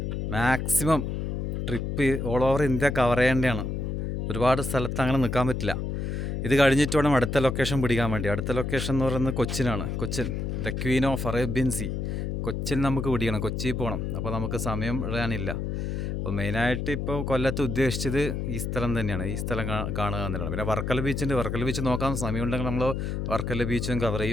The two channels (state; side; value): noise; left; hum, 2 dB below the sound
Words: maximum trip all over India cover ചെയ്യേണ്ടതാണ്. ഒരുപാട് സ്ഥലത്ത് അങ്ങനെ നിൽക്കാൻ പറ്റില്ല. ഇത് കഴിഞ്ഞിട്ട് വേണം അടുത്ത ലൊക്കേഷൻ പിടിക്കാൻ വേണ്ടി. അടുത്ത ലൊക്കേഷൻ എന്ന് പറയുന്നത് കൊച്ചിനാണ്. Cochin, the queen of Arabian Sea. Cochin നമുക്ക് പിടിക്കണം, കൊച്ചിയിൽ പോകണം. അപ്പോൾ നമുക്ക് സമയം ഇടാനില്ല. അപ്പോൾ മെയിനായിട്ട് ഇപ്പോൾ കൊല്ലത്ത് ഉദ്ദേശിച്ചത് ഈ സ്ഥലം തന്നെയാണ്, ഈ സ്ഥലം കാണുക എന്നുള്ളതാണ്. പിന്നെ വർക്കല ബീച്ചുണ്ട്, വർക്കല ബീച്ച് നോക്കാൻ സമയമുണ്ടെങ്കിൽ നമ്മൾ വർക്കല ബീച്ചും കവർ